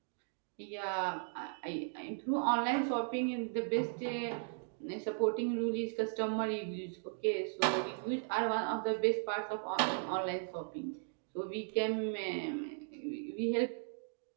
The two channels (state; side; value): silent; left; digital silence